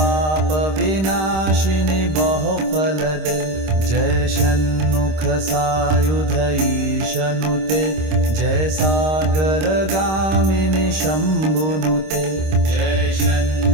विनाशिनी बहुफल दे जय षण्मुख सायुध ईशनुते जय सागर गामिनी शंभुनुते जय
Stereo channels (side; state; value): left; late; 26 ms